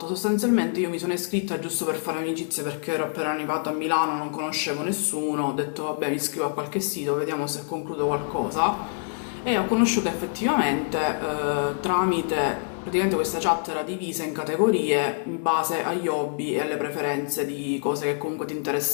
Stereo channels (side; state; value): right; silent; 58 dB below the other